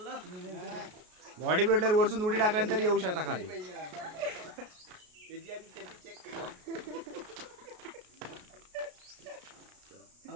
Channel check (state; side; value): late; left; 33 ms